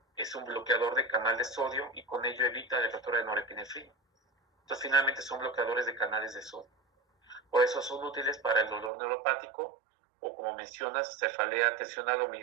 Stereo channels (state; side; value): drops out; left; at 8.9 s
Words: es un bloqueador de canal de sodio y con ello evita la recaptura de norepinefrina. Entonces, finalmente son bloqueadores de canales de sodio. Por eso son útiles para el dolor neuropático o, como mencionas, cefalea tensional o